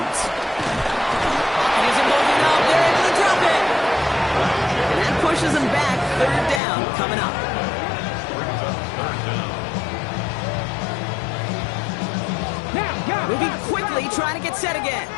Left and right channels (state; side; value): drops out; right; at 6.6 s